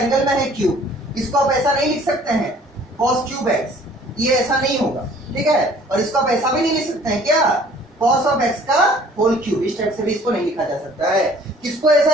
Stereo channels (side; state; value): both; normal; correlation 0.54